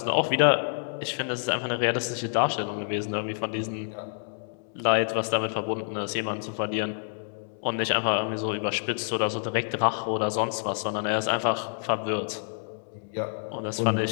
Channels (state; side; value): silent; right; digital silence